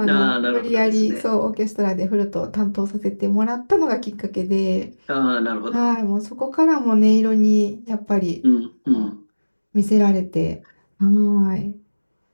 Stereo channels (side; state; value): both; inverted; correlation -1.00